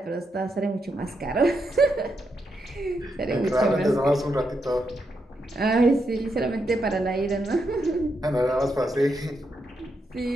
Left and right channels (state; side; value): normal; both; correlation 0.82